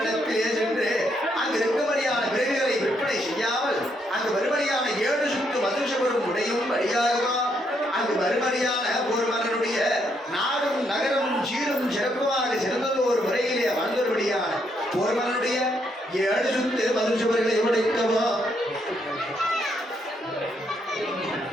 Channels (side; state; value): both; normal; correlation 0.75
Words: சென்று அங்கு இருக்கும்படியான விறகுகளை விற்பனை செய்யாமல் அங்கு வரும்படியான 7